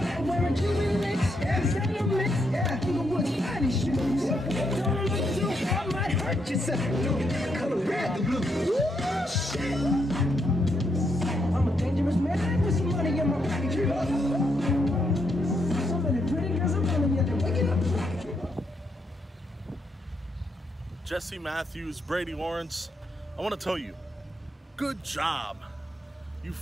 wearing Cuban links. Yeah, mix. Yeah, Inglewood's finest shoes. Don't look too hard, might hurt yourself. Color red, the blue. Ooh, shit. I'm a dangerous man with some money in my pocket. So many pretty girls I'm telling you, they're waking up. Jesse Matthews, Brady Lawrence, I want to tell you, good job. You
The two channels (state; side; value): normal; both; correlation 0.78